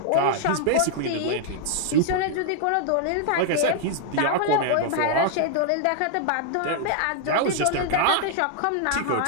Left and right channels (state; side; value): different; both; correlation 0.00